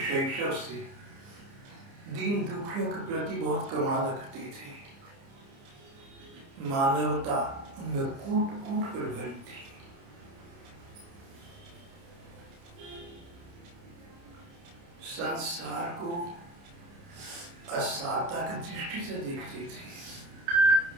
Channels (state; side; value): late; left; 29 ms